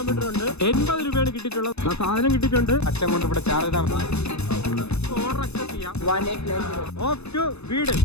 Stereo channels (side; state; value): right; late; 0.80 ms